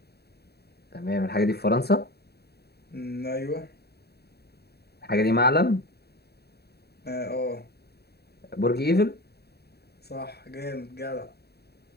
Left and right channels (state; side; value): late; right; 0.47 ms